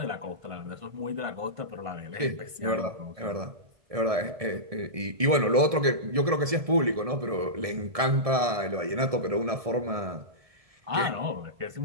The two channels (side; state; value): left; late; 1.7 ms